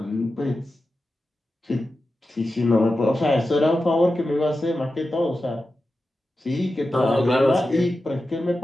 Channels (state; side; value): normal; both; correlation 0.92